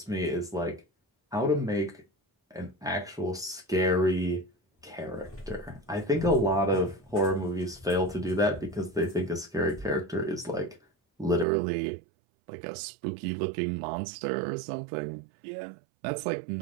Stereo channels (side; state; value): left; drops out; at 11.5 s